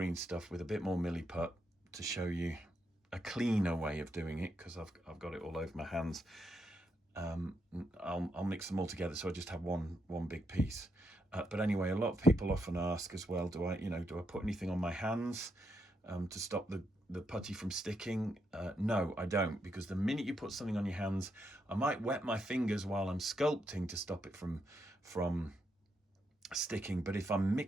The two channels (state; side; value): normal; both; correlation 0.81